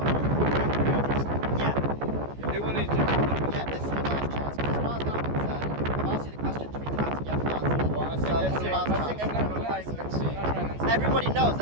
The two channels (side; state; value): left; late; 14 ms